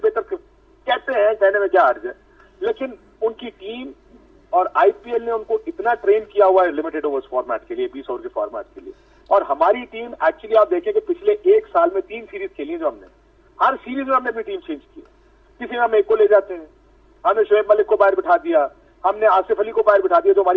कहते हैं, कहने में क्या हर्ज है। लेकिन उनकी टीम और आईपीएल ने उनको इतना ट्रेन किया हुआ है लिमिटेड ओवर्स फॉर्मेट के लिए, 20 ओवर के फॉर्मेट के लिए। और हमारी टीम एक्चुअली आप देखें कि पिछले 1 साल में 3 सीरीज खेली है जो हमने, हर सीरीज में हमने अपनी टीम चेंज की है। किसी में हम एक को ले जाते हैं, हमने शोएब मलिक को बाहर बिठा दिया, हमने आसिफ अली को बाहर बिठा दिया, जो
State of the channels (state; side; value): identical; both; correlation 1.00